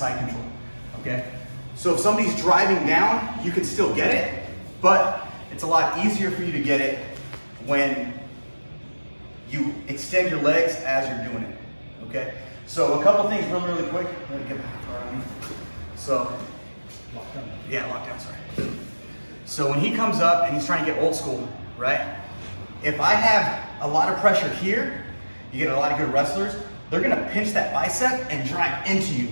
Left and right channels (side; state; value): both; inverted; correlation -1.00